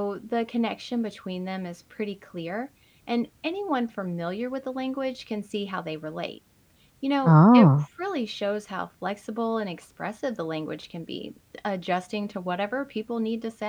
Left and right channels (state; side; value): identical; both; correlation 1.00